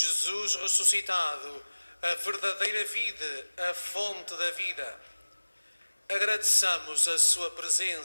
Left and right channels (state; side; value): inverted; both; correlation -1.00